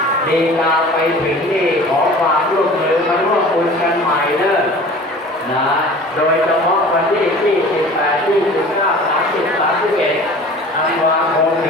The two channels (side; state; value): both; normal; correlation 0.43